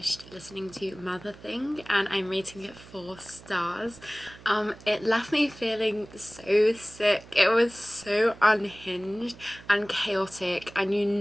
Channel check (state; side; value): noise; right; hum, 20 dB below the sound